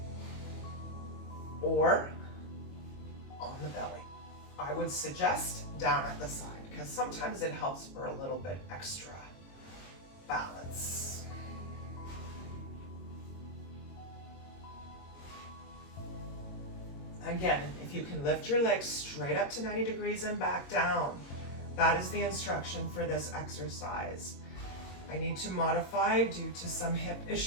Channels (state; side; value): late; right; 22 ms